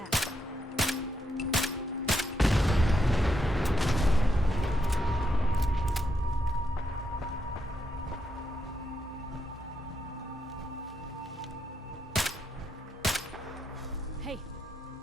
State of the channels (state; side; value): normal; both; correlation 0.81